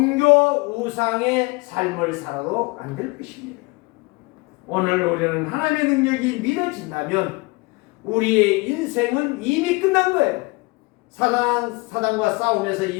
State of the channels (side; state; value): right; quieter; 25.3 dB